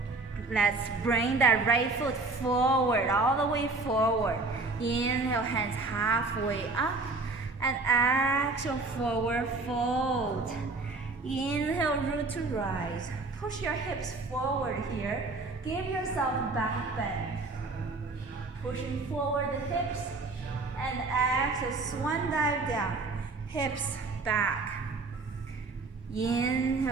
Let's bring that right foot forward, all the way forward. Inhale, hands halfway up. And exhale, forward fold. Inhale, root to rise. Push your hips forward here. Give yourself back bend. Pushing forward the hips. And exhale, swan dive down. Hips back.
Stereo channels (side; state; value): left; quieter; 3.6 dB